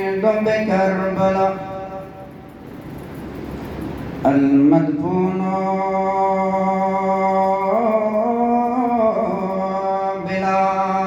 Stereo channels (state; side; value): identical; both; correlation 1.00